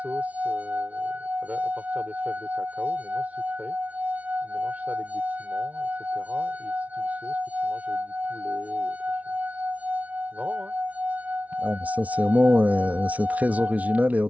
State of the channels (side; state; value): left; late; 0.068 ms